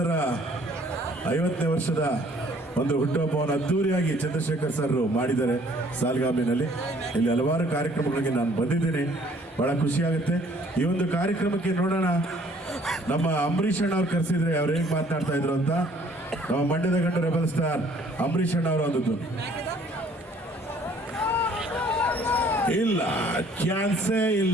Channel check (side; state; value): both; normal; correlation 0.59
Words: 50ನೇ ವರ್ಷದ ಒಂದು ಹುಟ್ಟುಹಬ್ಬವನ್ನು ಅದ್ದೂರಿಯಾಗಿ ಚಂದ್ರಶೇಖರ್ ಸರ್ ಮಾಡಿದ್ದಾರೆ ಸಾಲ್ಗಾಮಿನಲ್ಲಿ. ಇಲ್ಲಿ ಹಲವಾರು ಕಾರ್ಯಕ್ರಮಗಳಿಗೆ ನಾನು ಬಂದಿದ್ದೀನಿ, ಬಹಳ ಖುಷಿಯಾಗುತ್ತೆ. ಈ ಒಂದು ಕಾರ್ಯಕ್ರಮಕ್ಕೆ ನೋಡೋಣ, ನಮ್ಮ ಅಂಬರೀಷ್ ಅಣ್ಣ ಅವ್ರು ಕರೆಸಿದ್ರೆ ಅವ್ರು ಹೇಗೆ ಮಾತನಾಡ್ತಾ ಇದ್ರು ಅಂತ. ನಮ್ಮ ಮಂಡ್ಯದ ಗಂಡು ರೆಬಲ್ ಸ್ಟಾರ್ ಅಂಬರೀಷ್ ಅಣ್ಣ ಅವರು ಅಂದದ್ದು. ಇಲ್ಲ, ಚಾನ್ಸೇ